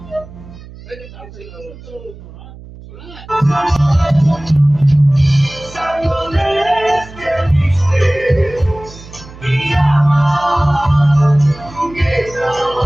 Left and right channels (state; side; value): noise; right; hum, 18 dB below the sound